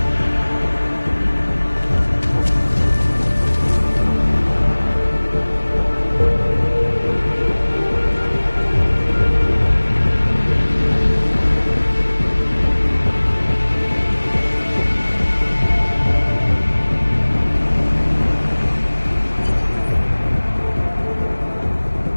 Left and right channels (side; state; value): both; inverted; correlation -1.00